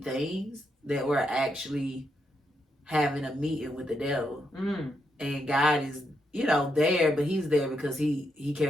that we're actually having a meeting with the devil. And God is there, but he's there because he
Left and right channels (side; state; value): both; normal; correlation 0.81